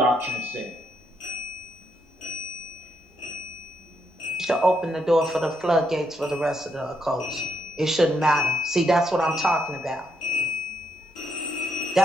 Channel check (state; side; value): normal; both; correlation 0.77